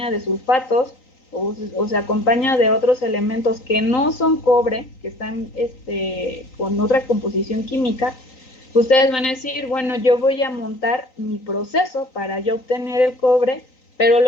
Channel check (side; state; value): right; late; 4.2 ms